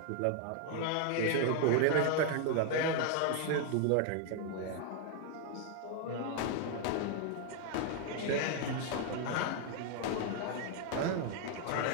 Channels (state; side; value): different; both; correlation 0.00